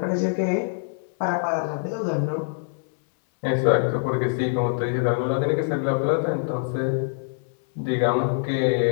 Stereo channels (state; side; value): silent; right; 62 dB below the other